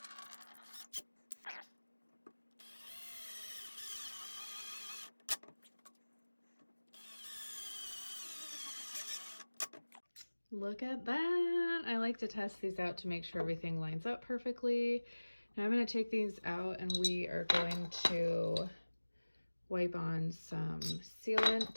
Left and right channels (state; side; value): inverted; both; correlation -1.00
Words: Look at that. I like to test these out to make sure everything lines up perfectly. Now I'm going to take these out and we are going to wipe on some